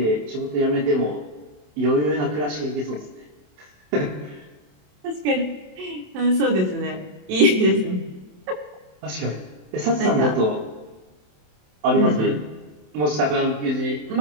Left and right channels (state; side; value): late; left; 27 ms